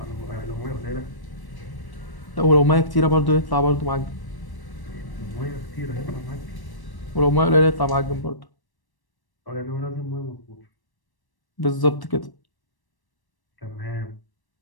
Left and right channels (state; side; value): late; right; 1.1 ms